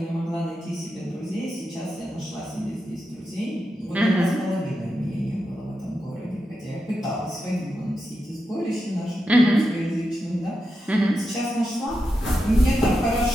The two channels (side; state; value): both; normal; correlation 0.88